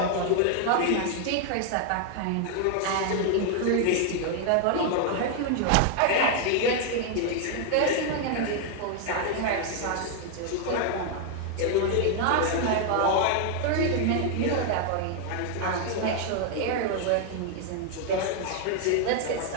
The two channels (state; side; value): different; both; correlation 0.00